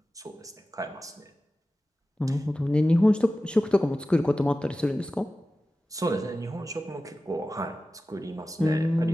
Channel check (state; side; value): normal; both; correlation 0.95